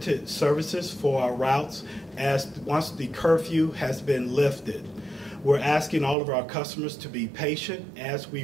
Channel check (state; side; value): drops out; left; at 6.2 s